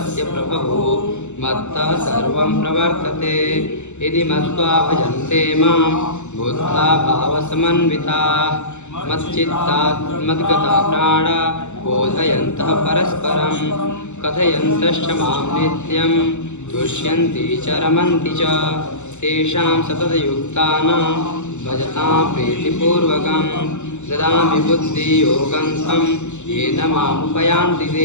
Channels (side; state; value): right; late; 0.83 ms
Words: प्रभवो मत्तः सर्वं प्रवर्तते यदि मत्वा भजन्ते मां बुद्धा भावसमन्विताः मच्चित्तात् मद्गता प्राणा बोधयन्तः परस्परं कथयन्तश्च मां नित्यं तुष्यन्ति च रमन्ति च तेषां सततयुक्तानां भजतां प्रीतिपूर्वकं ददामि बुद्धियोगं तं येन मामुपयान्ति